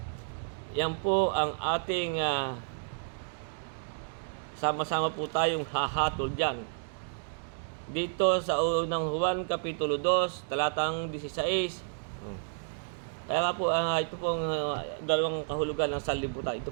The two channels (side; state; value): left; silent; digital silence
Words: Yan po ang ating sama-sama po tayong hahatol dyan. Dito sa unang Juan, Kapitulo 2, talatang 16. Kaya nga po, ito pong dalawang kahulugan ng sanlibutan.